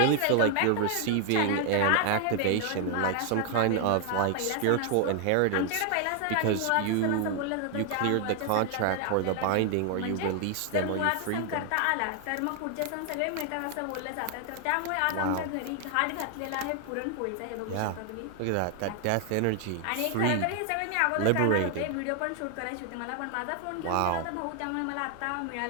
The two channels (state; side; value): different; both; correlation 0.00